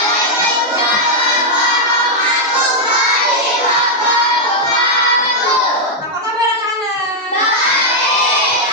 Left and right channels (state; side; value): normal; both; correlation -0.02